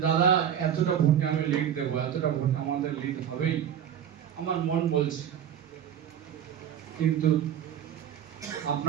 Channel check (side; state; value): left; quieter; 9.3 dB